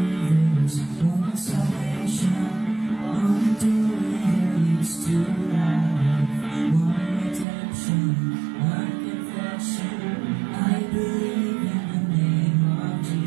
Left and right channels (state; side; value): drops out; left; at 7.5 s